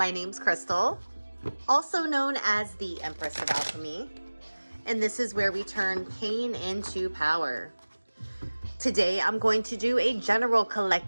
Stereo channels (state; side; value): inverted; both; correlation -1.00